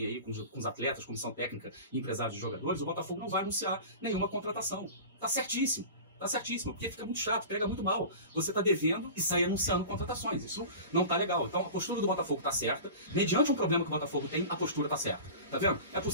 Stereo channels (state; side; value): inverted; both; correlation -0.35